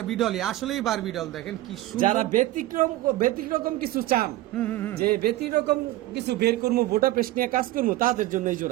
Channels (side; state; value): left; quieter; 16.4 dB